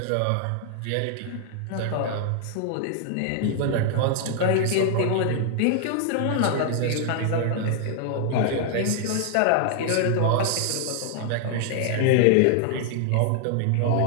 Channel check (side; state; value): both; different; correlation 0.00